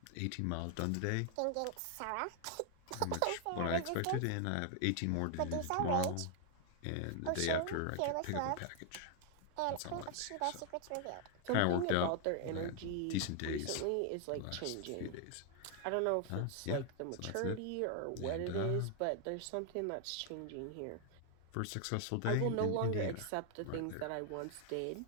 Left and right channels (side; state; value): both; different; correlation 0.00